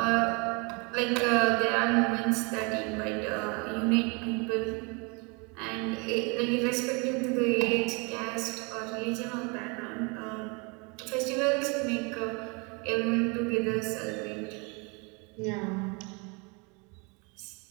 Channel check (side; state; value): left; quieter; 31.2 dB